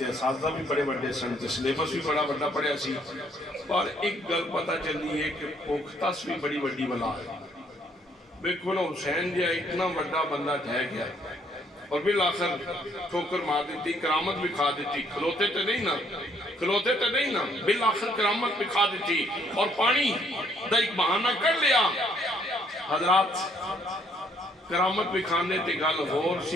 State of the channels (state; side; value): normal; both; correlation 0.66